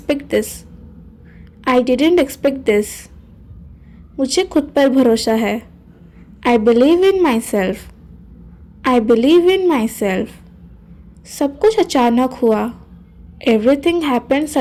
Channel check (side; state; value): both; identical; correlation 1.00